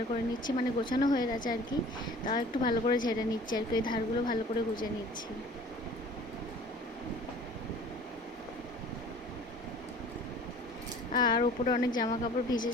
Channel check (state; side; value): normal; both; correlation 0.47